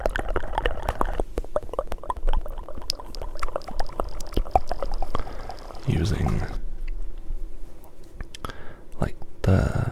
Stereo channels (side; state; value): both; identical; correlation 1.00